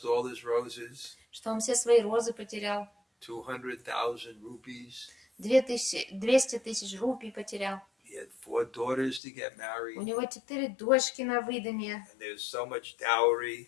all his roses, что он все свои розы потерял, 200,000 rupees. 200 тысяч рупий потерял. He had 4 daughters to get У married, него 4 дочки на выданье, and there was so much dowry.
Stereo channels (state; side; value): drops out; right; at 9.2 s